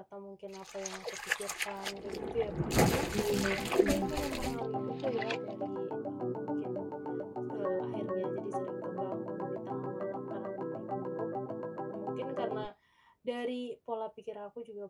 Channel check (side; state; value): both; identical; correlation 1.00